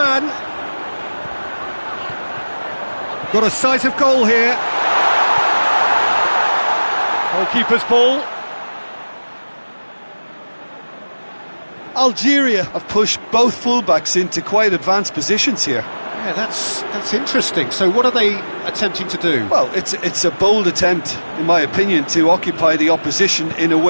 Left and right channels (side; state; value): both; inverted; correlation -1.00